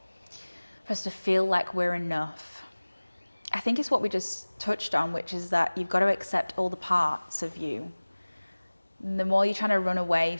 For us to feel like we're enough, I think it's what we just touched on, which is that you've got to accept all the parts of you. The more you're trying to run away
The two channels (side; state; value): both; inverted; correlation -1.00